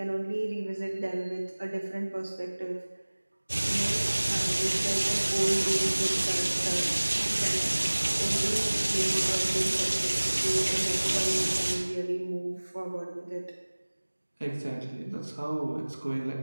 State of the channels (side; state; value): both; inverted; correlation -1.00